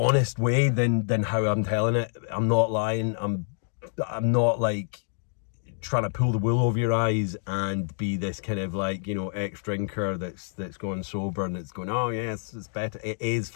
way than how I'm telling it. I'm not lying. I'm not like trying to pull the wool over your eyes and be this kind of, like, you know, ex-drinker that's going sober and it's going, oh yes, it's better. It is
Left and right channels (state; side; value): silent; right; 60 dB below the other